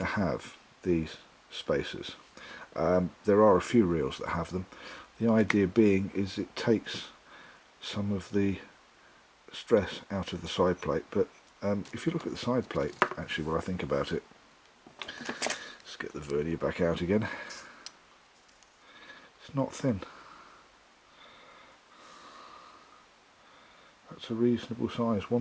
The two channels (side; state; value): both; identical; correlation 1.00